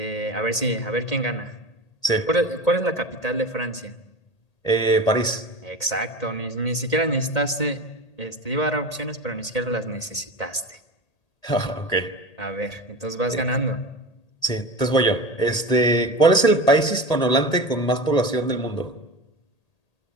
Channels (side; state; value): right; late; 1.8 ms